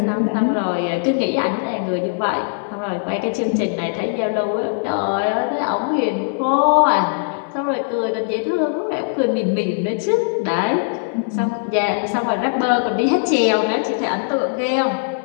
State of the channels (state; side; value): silent; right; 66 dB below the other